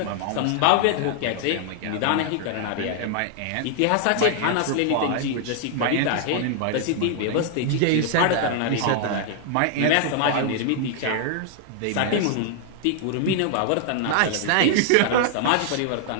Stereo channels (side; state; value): both; different; correlation 0.00